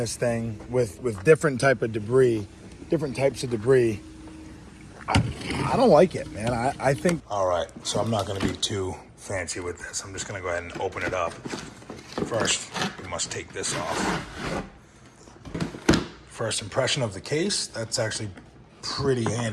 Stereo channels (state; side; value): identical; both; correlation 1.00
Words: thing with different types of debris, I don't like it, man. I think. All right, so I'm not going to be too fancy with this. I'm just going to go ahead and open it up. First, we must take this off. First impression of the case, that's actually pretty